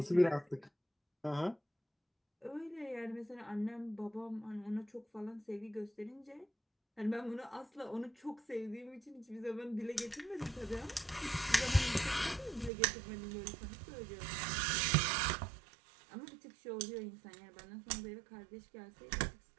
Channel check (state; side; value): drops out; left; at 12.7 s